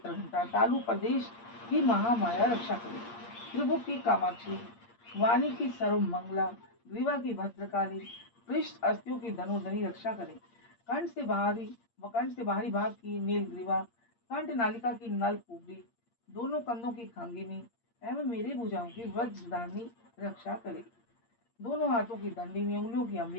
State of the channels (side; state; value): right; late; 8.6 ms